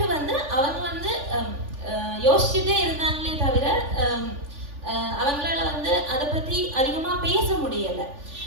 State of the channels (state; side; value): late; left; 3.4 ms